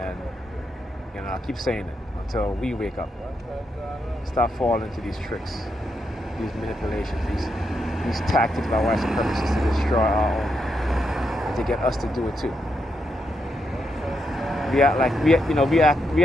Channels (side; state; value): both; normal; correlation 0.81